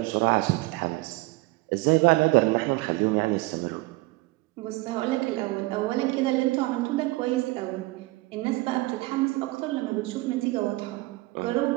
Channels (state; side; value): quieter; left; 21.7 dB